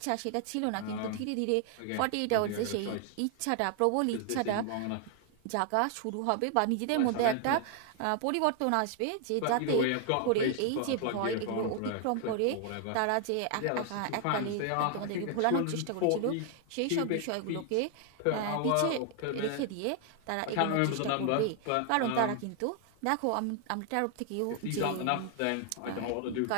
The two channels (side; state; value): both; different; correlation 0.00